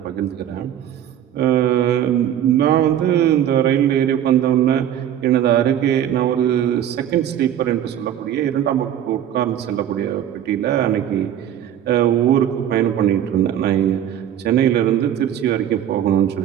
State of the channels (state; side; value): quieter; left; 10.5 dB